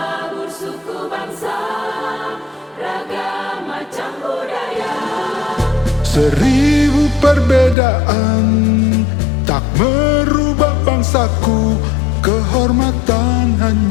suku bangsa, ragam macam budaya. 1000 perbedaan tak merubah bangsaku, kehormatan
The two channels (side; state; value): right; drops out; at 7.8 s